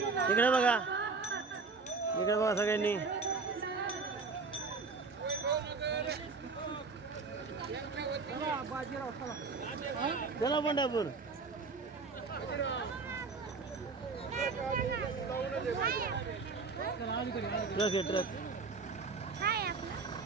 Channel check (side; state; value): left; quieter; 4.5 dB